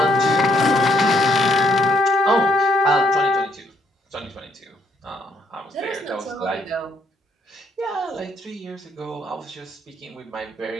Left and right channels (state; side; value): normal; both; correlation 0.71